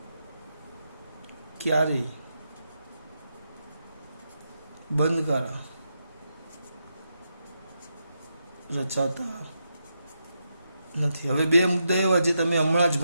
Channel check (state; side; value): inverted; both; correlation -0.84